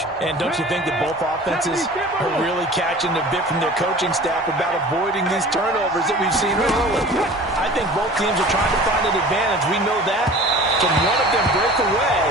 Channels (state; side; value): normal; both; correlation 0.42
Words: And don't you think that both offenses are really catching a bit from their coaching staff about avoiding these turnovers that we've seen early? I think both teams are trying to find an advantage. We know that. Can one of them break away